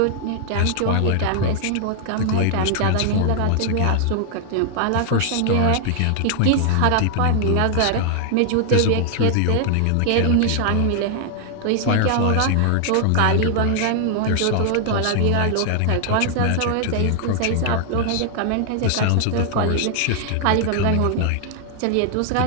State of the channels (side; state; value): both; different; correlation 0.00